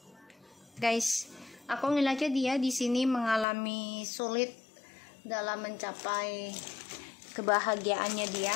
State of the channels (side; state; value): right; drops out; at 3.5 s